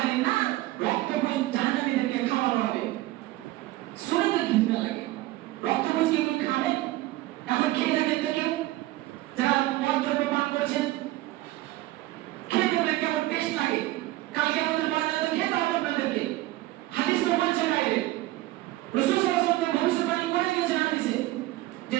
নার, রক্তপুঞ্জ জাহান্নামীদেরকে খাওয়ানো হবে। শুনে তো ঘৃণা লাগে, রক্তপুঞ্জ কি কেউ খাবে? এখন খেয়ে দেখেন তো কেউ যারা মদ দ্রব্য পান করেছেন, খেয়ে দেখবেন কেমন টেস্ট লাগে। কালকে আমাদের ময়দানে তো খেতে হবে আপনাদেরকে, হাদিস তো বলছে বাইরে, রাসূল সাল্লাল্লাহু আলাইহি ওয়াসাল্লাম ভবিষ্যৎবাণী করে দিয়েছেন হাদিসে যে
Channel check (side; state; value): left; quieter; 17.4 dB